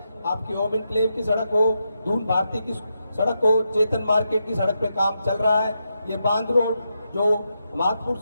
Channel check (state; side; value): inverted; both; correlation -0.85